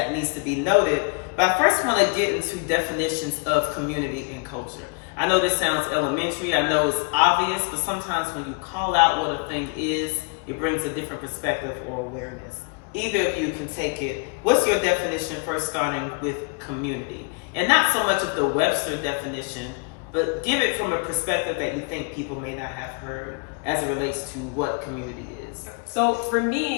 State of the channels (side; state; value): right; quieter; 34.3 dB